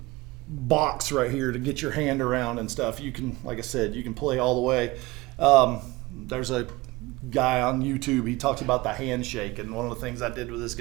box right here to get your hand around and stuff. You can, like I said, you can play all the way. There's a guy on YouTube, he talks about the handshake, and one of the things I did with this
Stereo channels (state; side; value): quieter; left; 21.4 dB